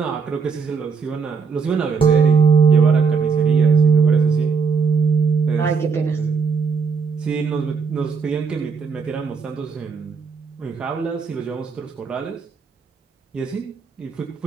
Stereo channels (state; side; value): quieter; left; 5.4 dB